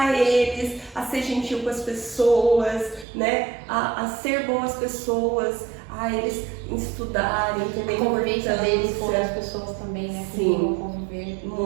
eles a ser gentil com as pessoas, né? A ser boas pessoas, a eles estudarem, entender a convivência deles com as pessoas também, né? Sim, conviver.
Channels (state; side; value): drops out; left; at 3.1 s